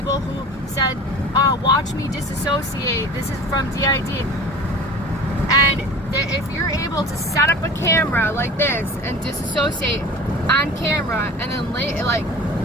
who said, watch me disassociate, this is from DID. And if you're able to set up a camera like this and disassociate on camera, and then like,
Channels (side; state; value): both; normal; correlation 0.39